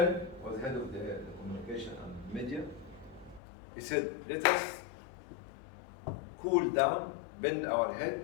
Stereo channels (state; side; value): drops out; right; at 3.4 s